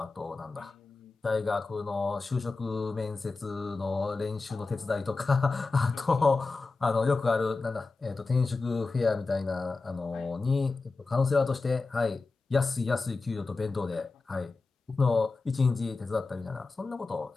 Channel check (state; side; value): quieter; right; 3.9 dB